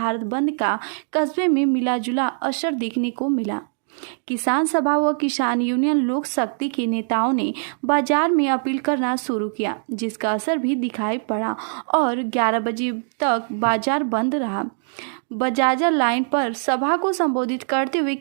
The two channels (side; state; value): left; silent; 61 dB below the other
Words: बंद का कस्बे में मिलाजुला असर देखने को मिला। किसान सभा व किसान यूनियन लोक शक्ति के नेताओं ने बाजार में अपील करना शुरू किया, जिसका असर भी दिखाई पड़ा और 11 बजे तक बाजार बंद रहा। बजाजा लाइन पर सभा को संबोधित करते हुए